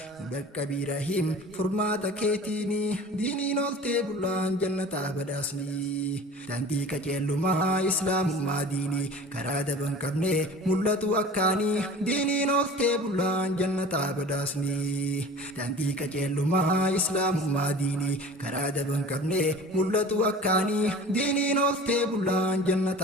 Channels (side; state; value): both; normal; correlation 0.41